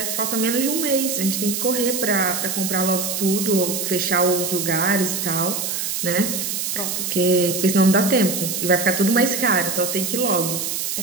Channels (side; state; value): right; noise; hiss, 2 dB below the sound